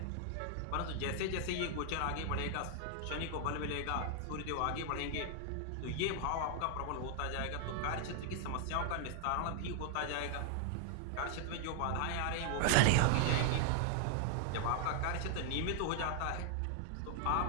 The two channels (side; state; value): both; different; correlation 0.00